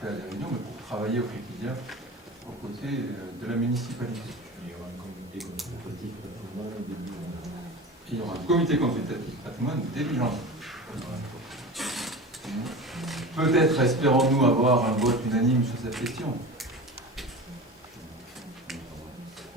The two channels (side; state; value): both; normal; correlation 0.32